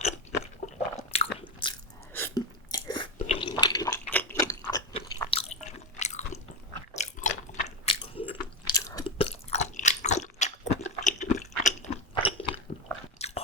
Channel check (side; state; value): both; normal; correlation 0.12